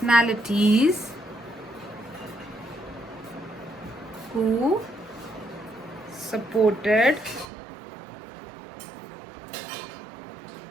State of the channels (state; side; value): drops out; left; at 7.5 s